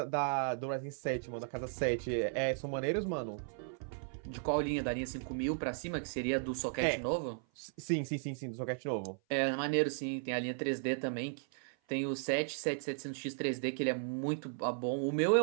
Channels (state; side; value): silent; left; 54 dB below the other